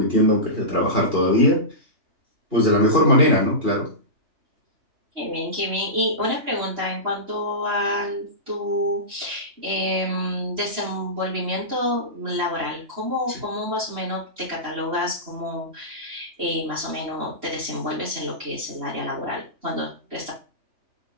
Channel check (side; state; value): left; late; 3.0 ms